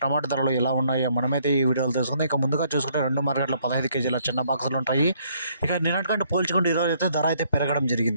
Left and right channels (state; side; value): inverted; both; correlation -0.67